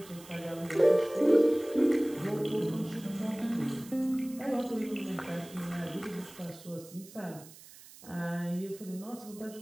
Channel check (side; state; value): right; noise; hiss, 20 dB below the sound